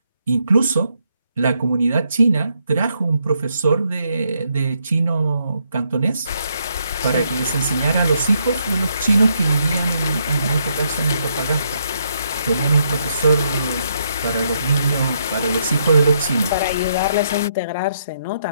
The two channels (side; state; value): both; inverted; correlation -0.76